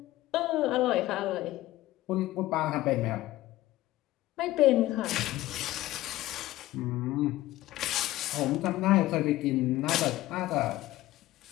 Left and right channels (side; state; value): right; quieter; 16.4 dB